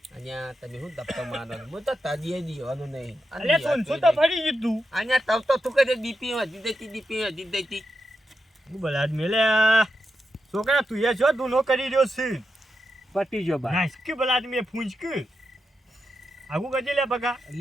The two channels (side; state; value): both; normal; correlation 0.87